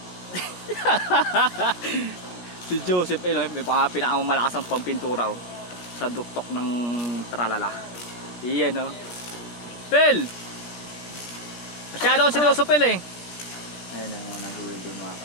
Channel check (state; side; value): late; right; 17 ms